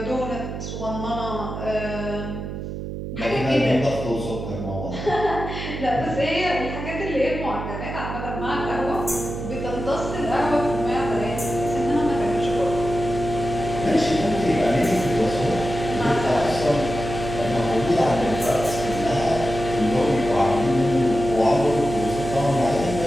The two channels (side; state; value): right; noise; hum, 7 dB below the sound